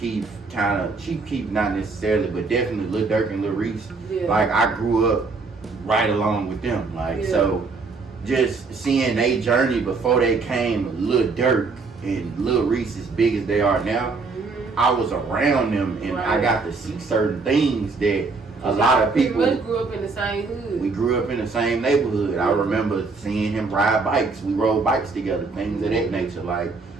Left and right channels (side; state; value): left; quieter; 4.2 dB